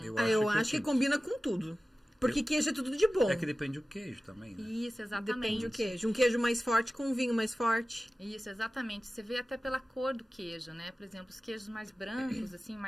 Eu acho que combina com tudo. Porque queijo é tudo de bom. É que depende do queijo também, né? Isso, exatamente. Depende do queijo. Um queijo mais forte com um vinho mais forte. Isso, exatamente. Você vê até pela cor do queijo, né? Por exemplo, os queijos mais brancos, assim,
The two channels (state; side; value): normal; both; correlation 0.96